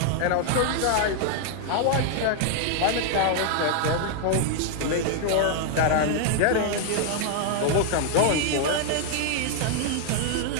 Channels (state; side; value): different; both; correlation 0.00